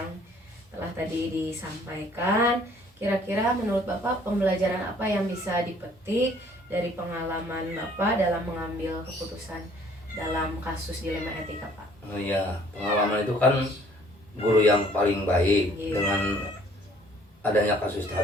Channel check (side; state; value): both; normal; correlation 0.58